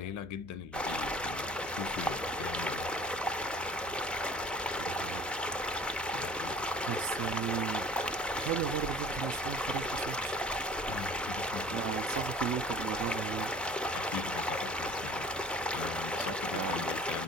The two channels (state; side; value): noise; right; hum, 21 dB below the sound